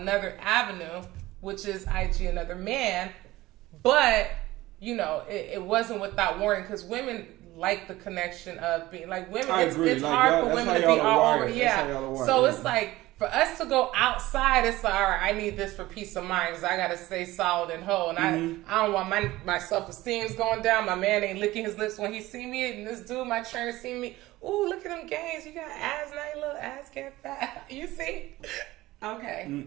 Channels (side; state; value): left; quieter; 17.8 dB